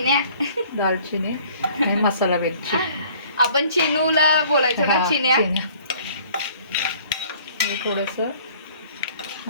दालचिनी आणि मसाला वेलची. आपण चिनूला बोलायचो ना, चिन्या. हे थोडंसं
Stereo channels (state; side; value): inverted; both; correlation -0.54